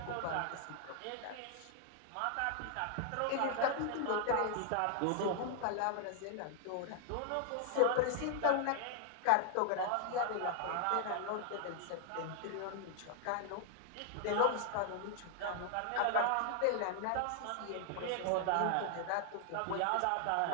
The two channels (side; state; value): both; different; correlation 0.00